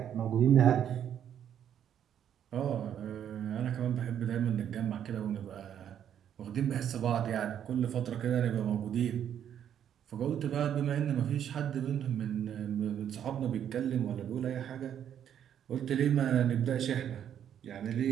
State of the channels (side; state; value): left; quieter; 9.5 dB